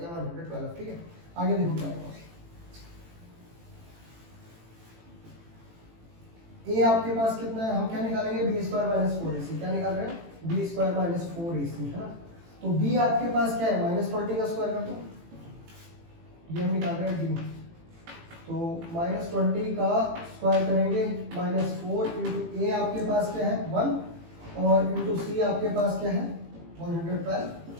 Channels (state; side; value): late; left; 18 ms